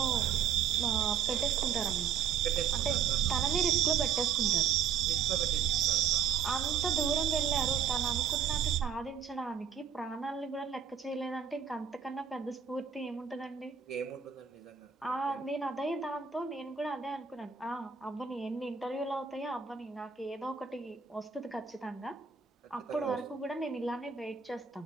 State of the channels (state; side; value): quieter; left; 7.4 dB